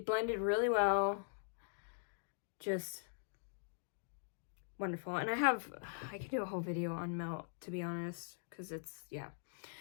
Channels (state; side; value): silent; right; digital silence